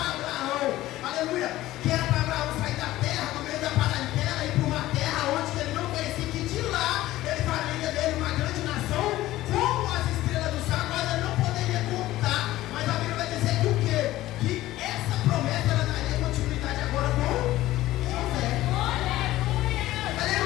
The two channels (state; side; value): quieter; right; 15.9 dB